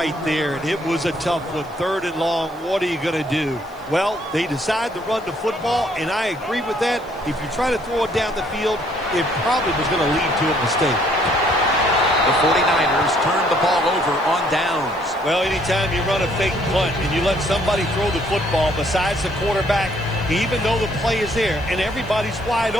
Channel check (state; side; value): noise; right; hiss, 28 dB below the sound